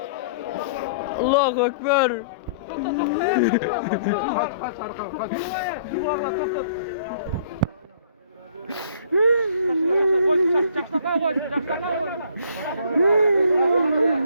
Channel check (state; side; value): inverted; both; correlation -0.57